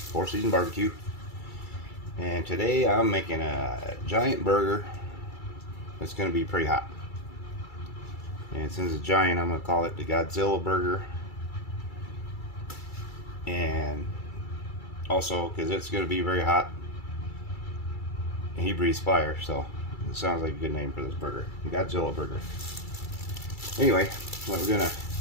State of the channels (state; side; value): late; right; 2.3 ms